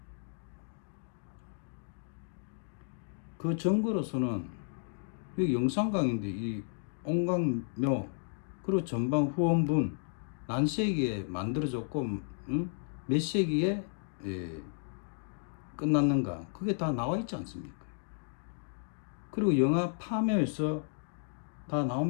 그 증거로서는 이 영산강인데 이 옹강묘 그리고 전방 후원분 난세기에 만들어졌고 몇 세기에 끝났는가 그게 다 나와 있지 않습니까? 그리고 영화 파묘에서 다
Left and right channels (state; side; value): silent; right; digital silence